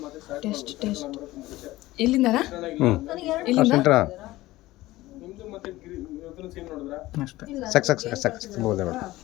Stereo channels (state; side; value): quieter; right; 17.6 dB